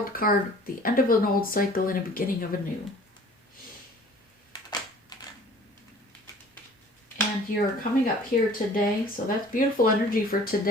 card, the end of an old cycle and a beginning of a new. And you're coming up here today, so that's beautiful energy for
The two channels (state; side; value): normal; both; correlation 0.50